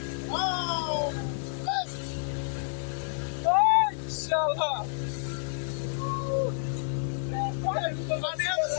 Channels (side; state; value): right; silent; digital silence